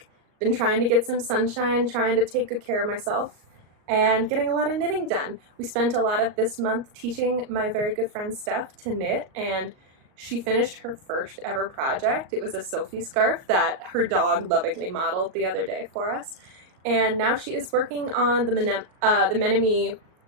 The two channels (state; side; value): late; left; 38 ms